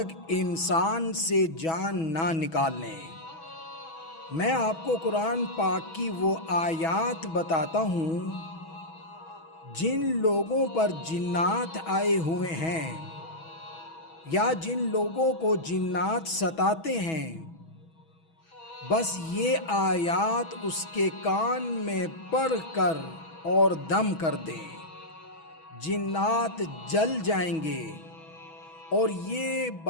انسان سے جان نہ نکال لیں۔ میں آپ کو قرآن پاک کی وہ آیات بتاتا ہوں جن لوگوں پر جنات آئے ہوئے ہیں یا جن لوگوں کو جنات ستاتے ہیں، بس یہ آیات اس کے کان میں پڑھ کر اور دم کر دیں، جنات جل جائیں گے۔ اور یہ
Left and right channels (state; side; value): late; right; 6.2 ms